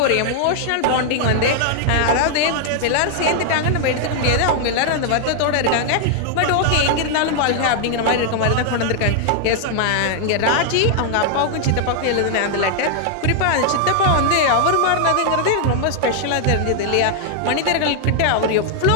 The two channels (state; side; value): different; both; correlation 0.00